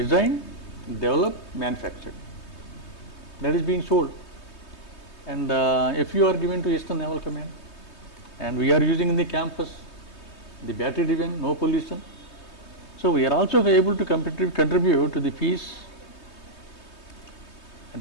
developed, manufactured. That is being sold. And if you are given to Eastern Naval Command, and we are using in the campus, the battery driven, no pollution. So we are also able to contribute to the peace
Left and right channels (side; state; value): right; late; 3.2 ms